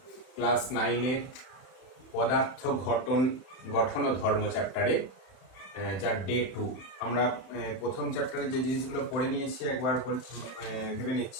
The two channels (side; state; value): right; late; 31 ms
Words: class 9-এর পদার্থ গঠন ও ধর্ম চ্যাপ্টারে, যার ডে 2। আমরা প্রথম চ্যাপ্টারে যে জিনিসগুলো পড়ে নিয়েছি একবার ভেবে